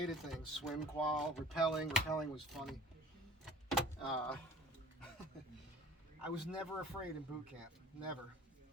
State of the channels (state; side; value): normal; both; correlation 0.48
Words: of things. Swim qual, rappelling. Rappelling was funny. I was never afraid in boot camp. Never.